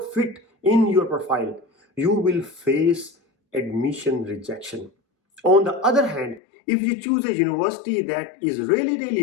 fit in your profile, you will face admission rejection. On the other hand, if you choose a university that is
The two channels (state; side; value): drops out; right; at 6.4 s